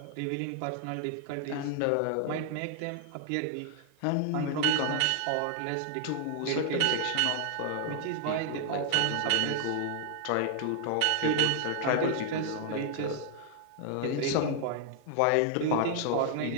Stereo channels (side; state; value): both; different; correlation 0.00